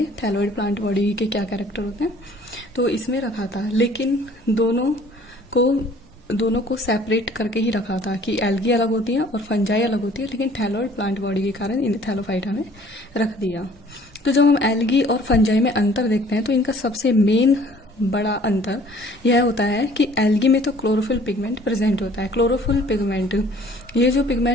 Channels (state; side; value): normal; both; correlation 0.54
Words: थैलोइड प्लांट बॉडी के क्या कैरेक्टर होते हैं। तो इसमें रखा था, लेकिन दोनों को सेपरेट करके ही रखा था कि एल्गी अलग होती है और फंजाई अलग होती है, लेकिन थैलोइड प्लांट बॉडी के कारण इन्हें थैलोफाइटा में रख दिया। तो जब हम एल्गी और फंजाई में अंतर देखते हैं तो इनका सबसे मेन बड़ा अंतर यह होता है कि एल्गी में तो क्लोरोफिल पिगमेंट प्रेजेंट होता है। क्लोरोफिल पिगमेंट, ये जो